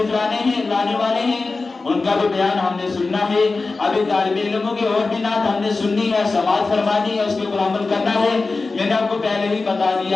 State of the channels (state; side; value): quieter; right; 3.8 dB